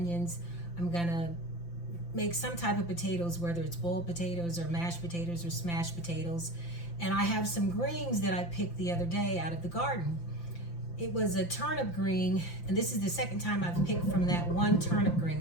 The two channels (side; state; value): right; late; 5.8 ms